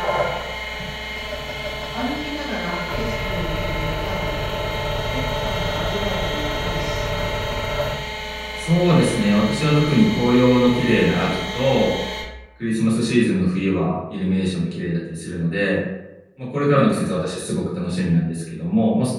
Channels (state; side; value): identical; both; correlation 1.00